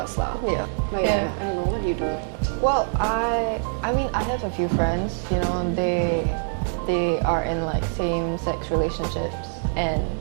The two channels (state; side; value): silent; left; digital silence